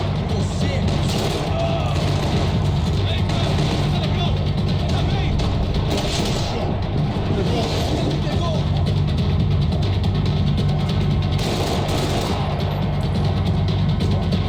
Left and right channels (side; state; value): both; identical; correlation 1.00